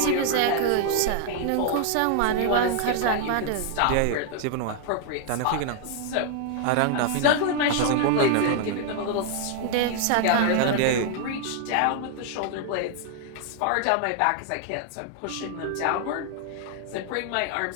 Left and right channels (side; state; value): both; different; correlation 0.00